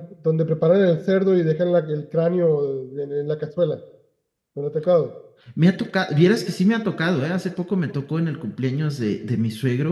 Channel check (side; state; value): both; identical; correlation 1.00